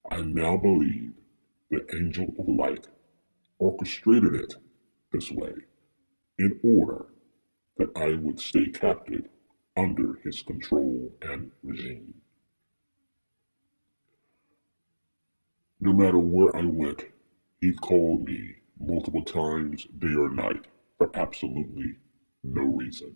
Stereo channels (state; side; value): inverted; both; correlation -1.00